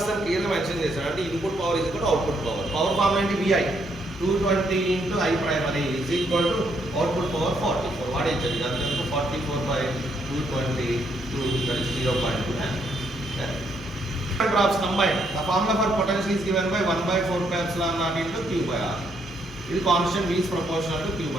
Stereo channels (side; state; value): both; normal; correlation 0.73